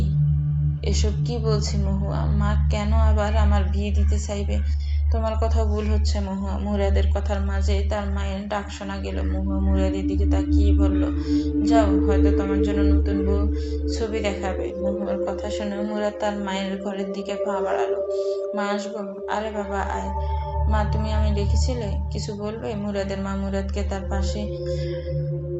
এসব কি বলছি মহুয়া? মা কেন আবার আমার বিয়ে দিতে চাইবে? তোমার কথা ভুল হচ্ছে মহুয়া। মুরাদের কথার মাঝে তার মায়ের ডাক শোনা গেল। মহুয়া মুরাদের দিকে তাকিয়ে বলল, যাও, হয়তো তোমার জন্য নতুন বউ ছবি দেখাবে। মহুয়ার কথা শুনে মুরাদ তার মায়ের ঘরের দিকে পা বাড়ালো। মা, আসবো? আরে বাবা, আয়। মা, তুমি আমি ডেকেছিলে, কিছু বলবে? মুরাদের মা মুরাদকে তার পাশে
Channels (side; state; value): both; identical; correlation 1.00